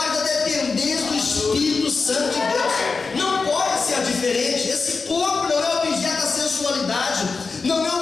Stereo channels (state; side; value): quieter; right; 4.5 dB